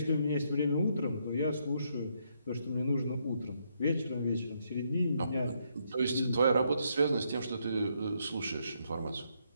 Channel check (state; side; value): inverted; both; correlation -0.75